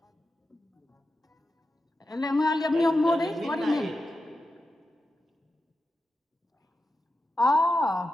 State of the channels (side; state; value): both; normal; correlation 0.90